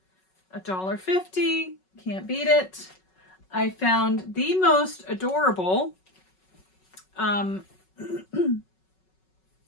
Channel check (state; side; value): late; right; 5.4 ms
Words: $1.50. Can't beat it. I found the most adorable